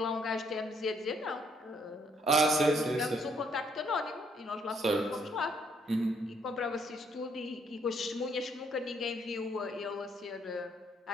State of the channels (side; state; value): both; normal; correlation 0.69